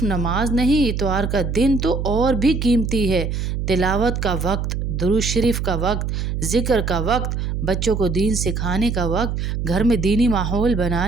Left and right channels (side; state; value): right; noise; hum, 2 dB below the sound